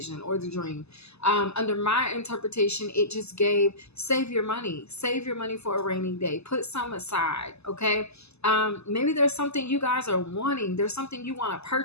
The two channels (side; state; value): right; late; 0.79 ms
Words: or the dream. Under my interpretation, it just gave, save your money for a rainy day. Put some aside, okay? Maybe there's something you guys are wanting. There's something you want to